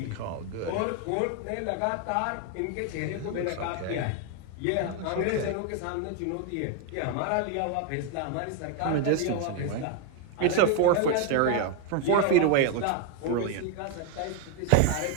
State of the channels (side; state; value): both; different; correlation 0.01